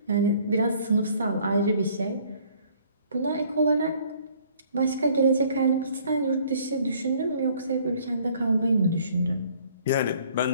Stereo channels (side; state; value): both; inverted; correlation -0.58